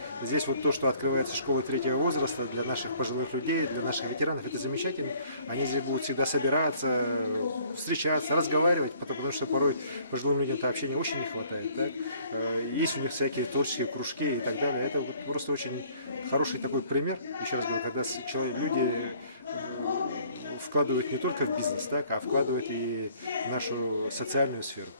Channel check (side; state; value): both; inverted; correlation -0.58